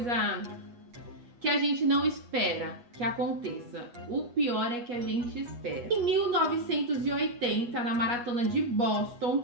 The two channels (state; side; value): late; left; 8.4 ms